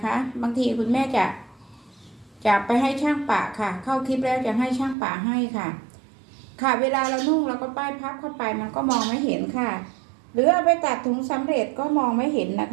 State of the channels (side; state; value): left; drops out; at 5.0 s